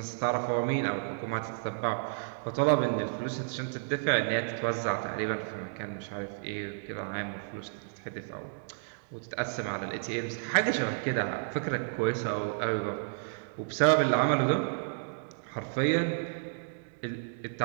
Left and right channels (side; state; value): left; silent; digital silence